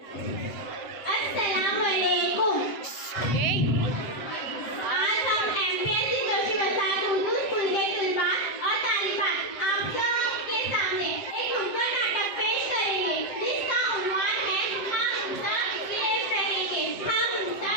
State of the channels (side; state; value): right; late; 7.9 ms